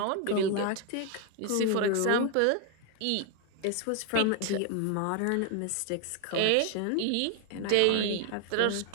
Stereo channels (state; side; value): different; both; correlation 0.00